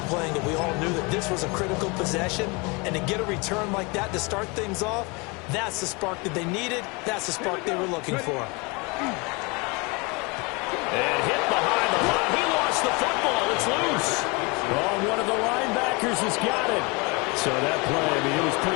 it. We all knew that this was a critical possession, and to get a return like that to start things off, that's the spark that they needed. That's the spark they were looking for. And hit behind the line. He lost the football. It's loose. Oh, one of the linebackers has got it. So that play, I mean, it was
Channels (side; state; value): right; quieter; 28.4 dB